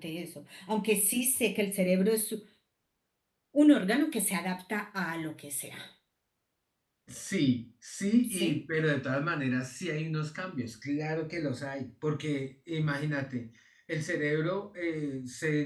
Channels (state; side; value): identical; both; correlation 1.00